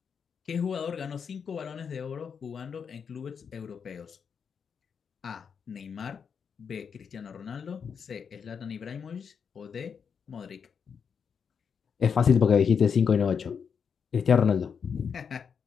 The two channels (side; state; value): right; quieter; 6.6 dB